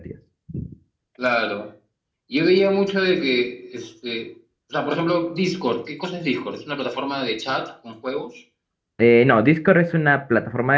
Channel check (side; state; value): both; identical; correlation 1.00